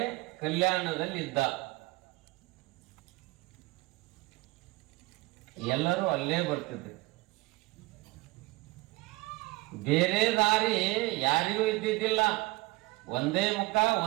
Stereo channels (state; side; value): quieter; left; 21.9 dB